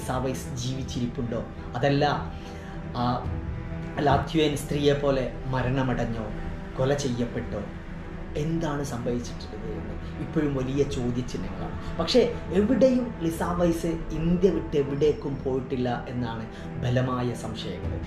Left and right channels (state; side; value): identical; both; correlation 1.00